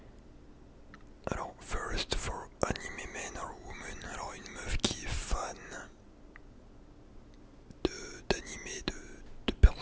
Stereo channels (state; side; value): identical; both; correlation 1.00